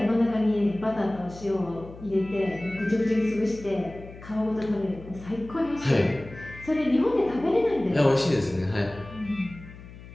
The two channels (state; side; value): noise; left; hum, 17 dB below the sound